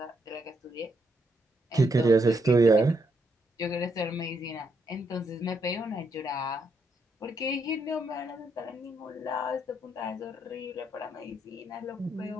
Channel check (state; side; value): normal; both; correlation 0.77